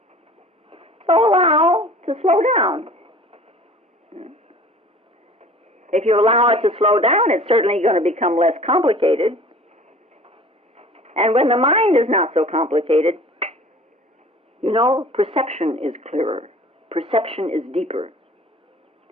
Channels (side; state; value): both; normal; correlation 0.46